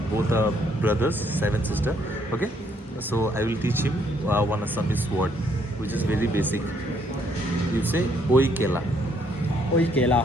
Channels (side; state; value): both; normal; correlation 0.69